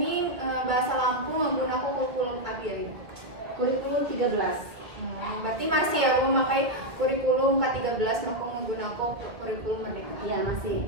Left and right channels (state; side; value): late; left; 1.8 ms